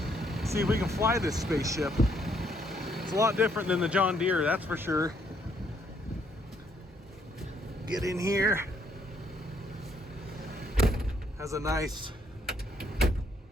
see if we can fly this spaceship. It's a lot different than the John Deere, that's for sure. Get in here. Has a nice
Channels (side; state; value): both; normal; correlation 0.70